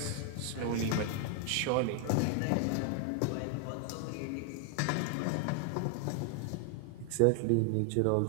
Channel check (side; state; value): both; different; correlation 0.00